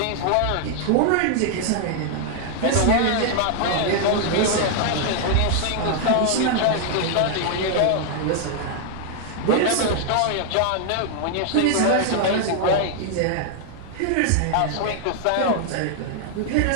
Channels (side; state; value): both; different; correlation 0.00